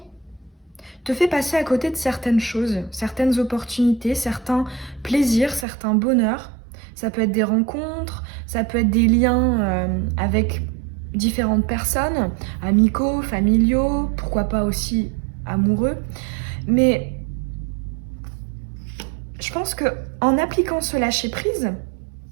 te fait passer à côté de certaines choses, certaines opportunités, certains plaisirs, certains bonheurs. Ça peut être des rencontres, ça peut être des liens avec différentes personnes, amicaux, familiaux, pourquoi pas aussi amoureux. Mais je pense qu'en appliquant ce lâcher-prise,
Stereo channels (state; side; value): drops out; left; at 5.7 s